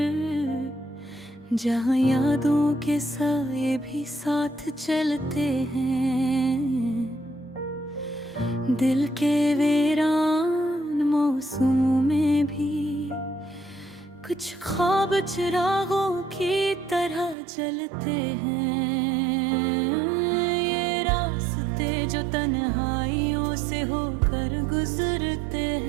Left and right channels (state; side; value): drops out; left; at 17.4 s